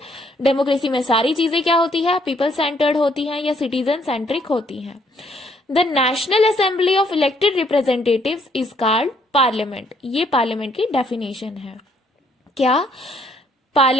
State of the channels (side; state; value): both; normal; correlation 0.68